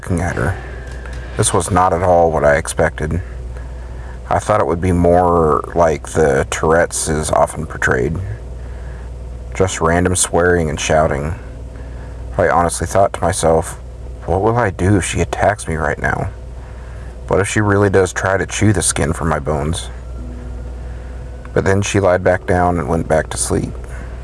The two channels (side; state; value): both; identical; correlation 1.00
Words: at her. This was not at all what I expected. I thought it would be more like the Tourette's is often portrayed. Just random swearing and shouting. I honestly thought to myself, what will I do if she attacks me right now? What if she really does try to chew the skin from my bones? But then she lied back down and went back to sleep.